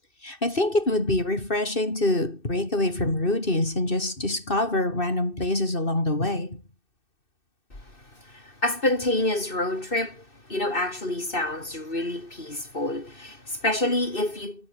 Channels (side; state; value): right; late; 2.6 ms